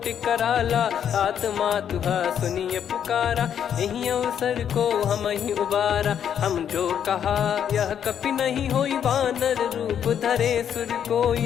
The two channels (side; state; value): right; quieter; 8.9 dB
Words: कराला। सात मातुहा सुनिय पुकारा, यही अवसर को हम ही उबारा। हम जो कहा यह कपि नहीं होई, वानर रूप धरे सुर